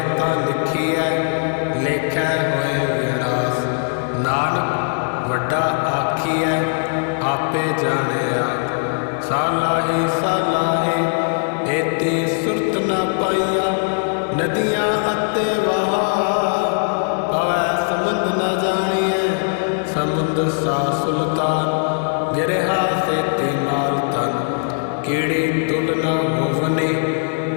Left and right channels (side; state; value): right; silent; digital silence